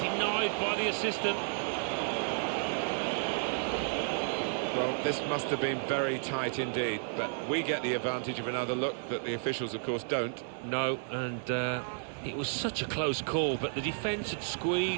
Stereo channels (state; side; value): silent; left; digital silence